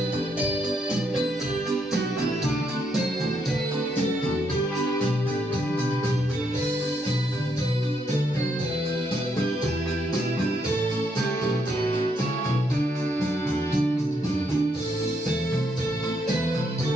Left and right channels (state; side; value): normal; both; correlation 0.76